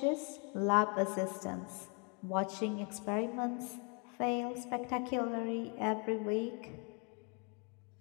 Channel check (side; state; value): right; quieter; 36.0 dB